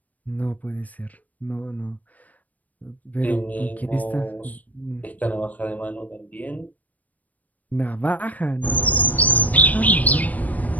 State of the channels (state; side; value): late; right; 0.075 ms